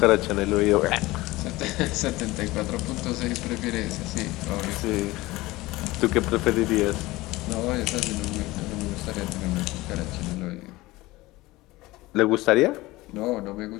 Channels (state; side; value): quieter; right; 19.7 dB